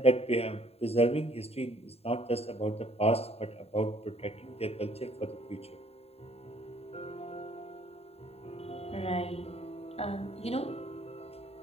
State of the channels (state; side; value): late; right; 0.29 ms